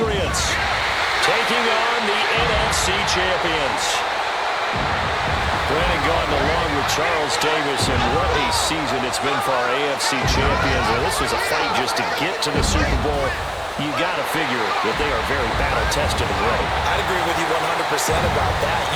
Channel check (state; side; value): identical; both; correlation 1.00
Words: taking on the NFC champions. Brandon Gaudin along with Charles Davis, and what a season it's been for our AFC champions. And this was a fight just to get to the Super Bowl. You got to figure that they are very battle-tested already. I'd agree with you 100% about that.